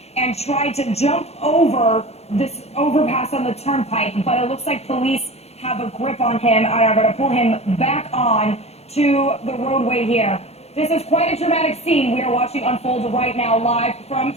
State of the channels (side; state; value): right; late; 0.31 ms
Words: and tried to jump over this overpass on the Turnpike, but it looks like police have a grip on him and are going to pull him back on to the roadway here. This is quite a dramatic scene we are watching unfold right now live from